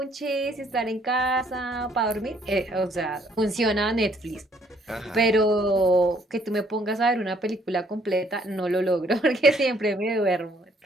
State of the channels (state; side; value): normal; both; correlation 0.64